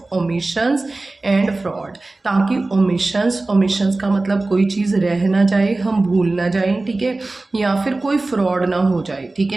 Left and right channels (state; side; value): quieter; left; 3.1 dB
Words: omissions and fraud, ताकि omissions का मतलब कोई चीज़ रह ना जाए, हम भूल ना जाएं, ठीक है, या फिर कोई फ्रॉड ना हो जाए, ठीक